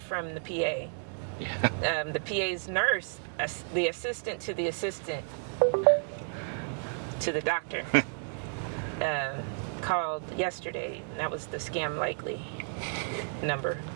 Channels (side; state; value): left; silent; 57 dB below the other